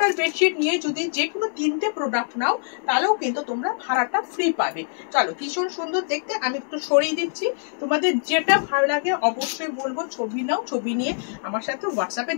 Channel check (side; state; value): right; silent; digital silence